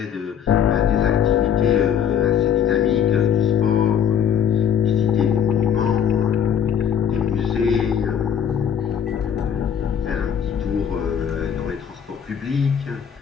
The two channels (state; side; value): quieter; right; 8.4 dB